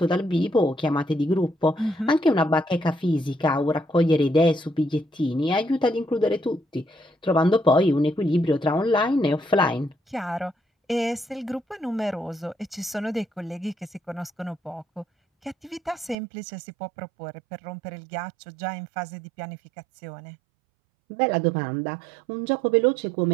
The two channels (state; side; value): drops out; left; at 16.2 s